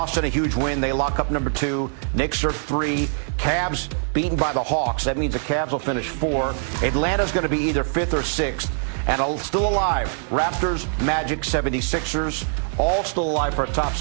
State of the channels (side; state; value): left; silent; 63 dB below the other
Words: a huge win. They lock up number 2. Knicks are 3. Cavs beaten by the Hawks. That means the Cavs will finish 4. Atlanta's going to be either 5th or 6th. And still alive, Raptors, Magic, 76ers, all still alive for a top